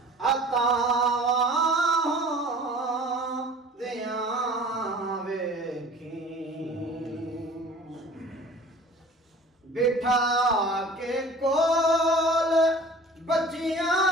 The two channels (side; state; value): both; normal; correlation 0.44